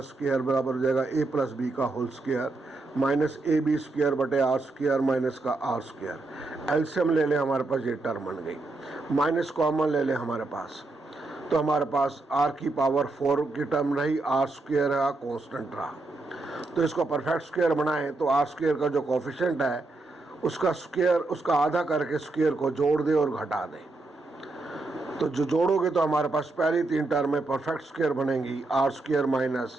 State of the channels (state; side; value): quieter; left; 3.2 dB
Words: स्क्वायर बराबर हो जाएगा ए प्लस बी का whole square minus a b square बटे आर स्क्वायर माइनस का आर स्क्वायर। एलसीएम ले लें, हमारे पास ये टर्म बन गई, माइनस कॉमन ले लें हमारे पास, तो हमारे पास आर की पावर 4 की टर्म रही, आर स्क्वायर रहा, कॉन्स्टेंट रहा। तो इसको परफेक्ट स्क्वायर बनाएं तो आर स्क्वायर का जो कोफिशिएंट है उसका स्क्वायर, उसका आधा करके स्क्वायर को जोड़ दें और घटा दें, तो जो जोड़ोगे तो हमारे पास पहली 3 टर्म में परफेक्ट स्क्वायर बनेंगी, आर स्क्वायर